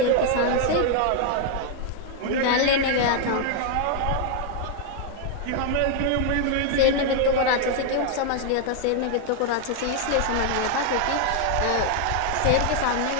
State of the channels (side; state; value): both; different; correlation 0.00